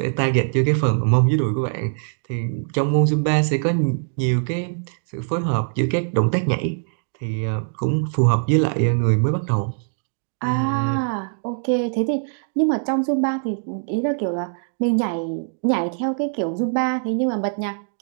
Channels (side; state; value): left; silent; digital silence